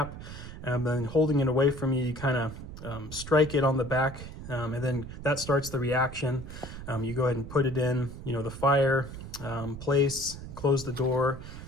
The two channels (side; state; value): right; noise; rumble, 11 dB below the sound